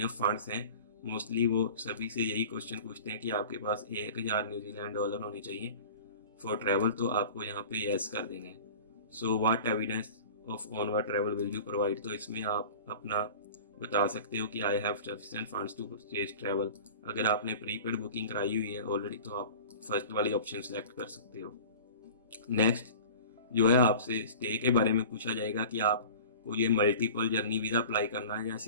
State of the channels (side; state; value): both; inverted; correlation -0.39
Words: फंड्स हैं, मोस्टली वो सभी से यही क्वेश्चन पूछते हैं कि आपके पास 1000 न्यूजीलैंड डॉलर होने चाहिए फॉर ट्रैवल, तो आपको यहाँ पे येस कर देना है। So what evidence of onward travel will you provide, तो इसमें आप अपना बता सकते हो कि I have sufficient funds to purchase travel. अगर आपने प्रीपेड बुकिंग कराई हुई है ऑलरेडी तो आप फर्स्ट वाली ऑप्शन सेलेक्ट कर सकते हो। नेक्स्ट जो है आपसे स्टे के बारे में पूछा जाएगा कि आपको ये मल्टीपल जर्नी वीज़ा अप्लाई करना है या